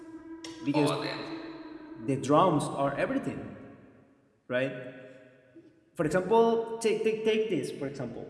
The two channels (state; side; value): identical; both; correlation 1.00